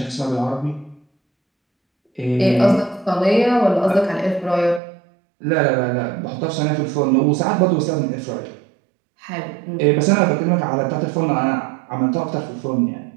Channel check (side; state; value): left; drops out; at 4.8 s